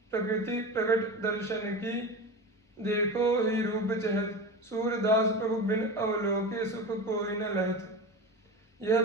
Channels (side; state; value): both; normal; correlation 0.27